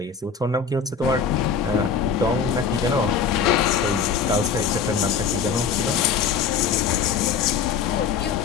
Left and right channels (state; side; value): quieter; right; 6.2 dB